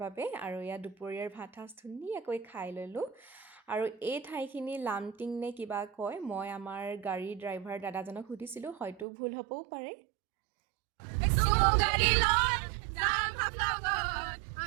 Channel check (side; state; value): left; drops out; at 9.1 s